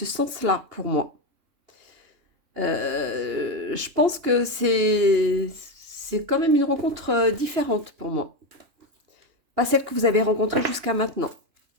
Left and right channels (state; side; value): late; left; 2.8 ms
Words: sens-là pour moi. Je pense que c'est quand même une rencontre différente pour moi. Pas celle que vous avez rencontrée jusqu'à maintenant.